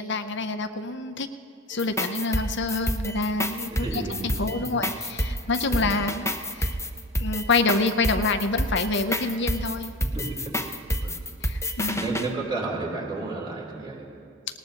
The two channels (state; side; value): normal; both; correlation 0.33